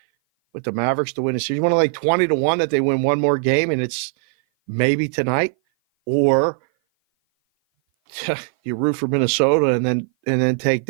with the Mavericks to win the series. You want to lay 20-1 that they win one more game and it's maybe tonight, or you root for Minnesota and then take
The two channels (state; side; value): silent; left; 57 dB below the other